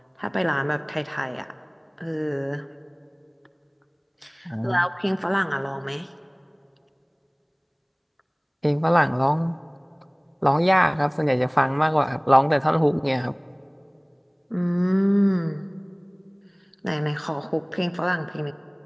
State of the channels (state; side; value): identical; both; correlation 1.00